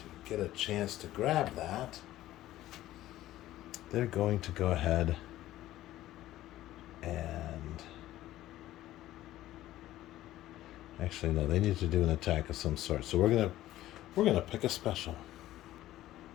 get a chance to grab that, they're going to go ahead and actually no, they need to do an attack of some sort. So we're gonna pick a special.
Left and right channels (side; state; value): right; quieter; 14.6 dB